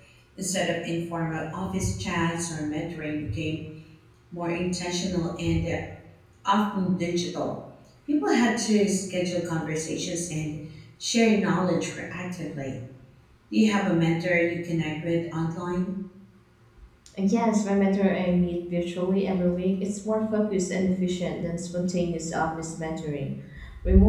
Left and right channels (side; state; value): both; identical; correlation 1.00